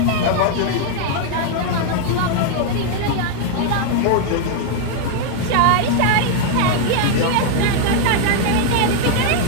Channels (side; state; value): both; different; correlation 0.00